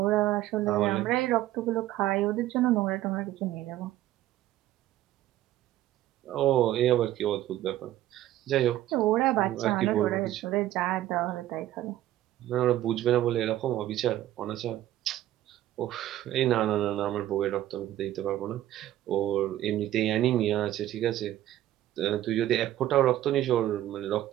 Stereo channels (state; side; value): quieter; left; 13.8 dB